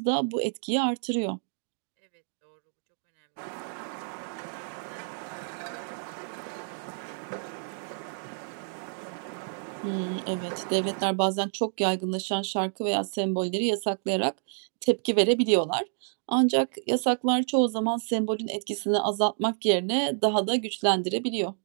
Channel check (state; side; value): silent; left; digital silence